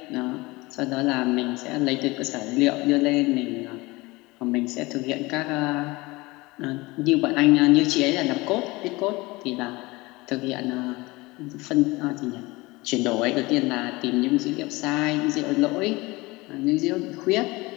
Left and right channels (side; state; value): right; quieter; 22.5 dB